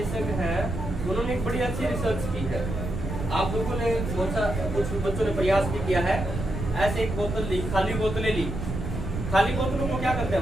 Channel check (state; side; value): noise; right; rumble, 5 dB below the sound